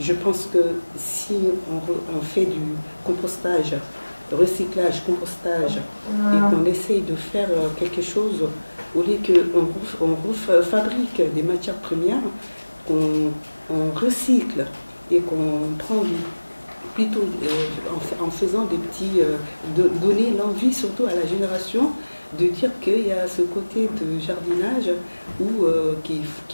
pense que si on fait du compostage, recyclage, compostage, et qu'on essaye de faire quelque chose, au lieu qu'on fabrique des matières premières, qu'on recycle et qu'on prend plutôt en faisant des petits, donner l'envie surtout à la génération de dire qu'il y a ce côté de jardinage où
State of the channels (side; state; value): both; inverted; correlation -1.00